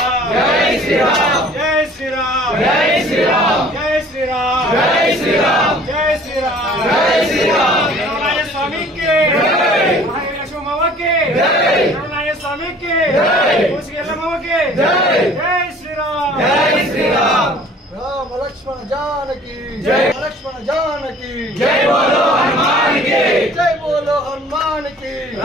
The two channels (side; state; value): both; normal; correlation 0.51